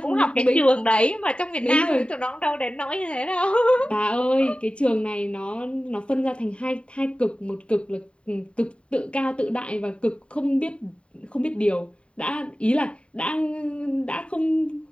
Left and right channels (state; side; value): late; right; 0.057 ms